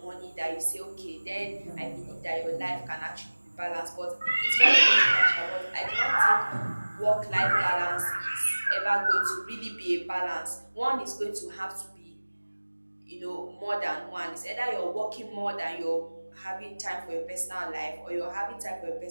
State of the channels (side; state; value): both; inverted; correlation -1.00